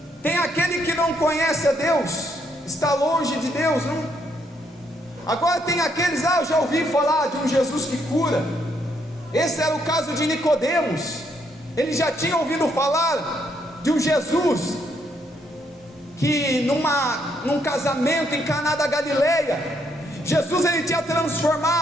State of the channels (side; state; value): both; normal; correlation 0.73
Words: Tem aquele que não conhece a Deus, está longe de Deus, não? Agora tem aqueles: eu já ouvi falar de um Jesus que cura. Esse era o caso de Nicodemos. Ele já tinha ouvido falar de um Jesus que num casamento em Caná da Galileia, Jesus ele tinha